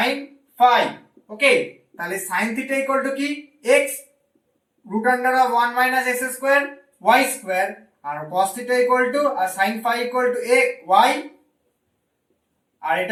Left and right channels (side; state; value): both; identical; correlation 1.00